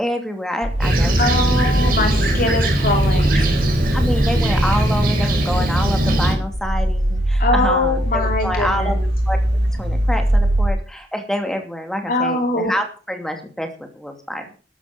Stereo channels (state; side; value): normal; both; correlation 0.73